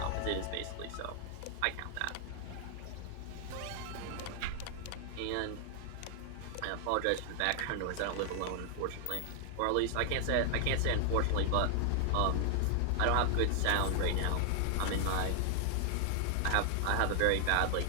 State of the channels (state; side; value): different; both; correlation 0.00